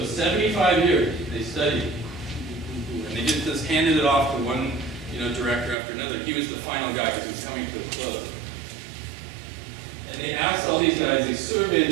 75 years they studied, and they just handed it off to one director after another. He was the final guy because he was coming to a close. And they asked all these guys, they surveyed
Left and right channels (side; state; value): left; drops out; at 5.8 s